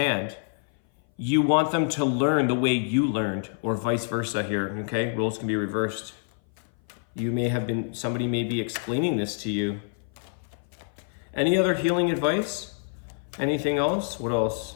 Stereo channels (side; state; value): right; silent; 57 dB below the other